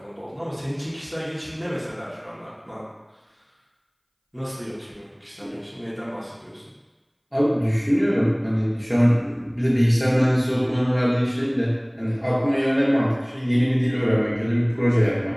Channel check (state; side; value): identical; both; correlation 1.00